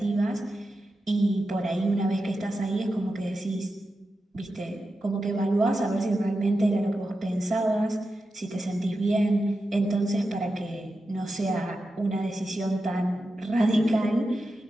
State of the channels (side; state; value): both; normal; correlation 0.90